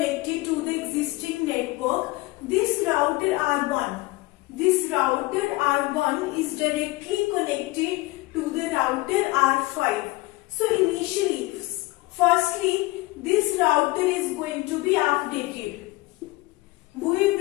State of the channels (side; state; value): right; quieter; 20.9 dB